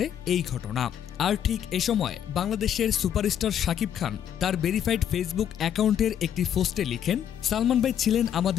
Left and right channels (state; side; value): quieter; right; 9.6 dB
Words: এই ঘটনা। আর ঠিক এ সময় বাংলাদেশের সুপারস্টার শাকিব খান তার ভেরিফাইড ফেসবুক অ্যাকাউন্টের একটি পোস্টে লিখেন, সালমান ভাই ছিলেন